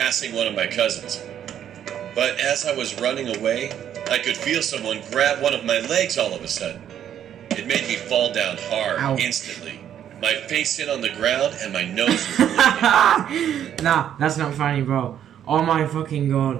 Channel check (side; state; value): left; quieter; 10.0 dB